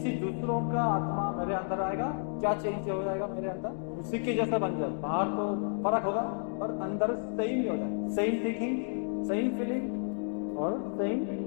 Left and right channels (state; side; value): silent; right; 57 dB below the other